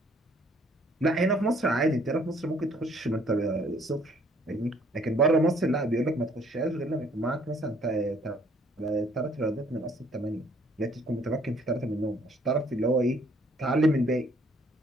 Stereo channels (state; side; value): normal; both; correlation 0.62